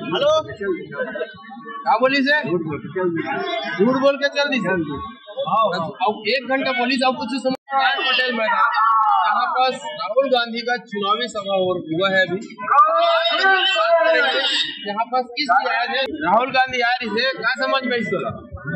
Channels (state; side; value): identical; both; correlation 1.00